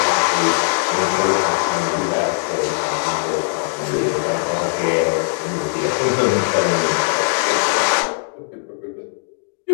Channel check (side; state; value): right; silent; digital silence